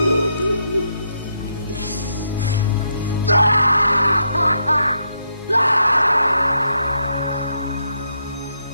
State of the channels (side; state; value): both; inverted; correlation -0.78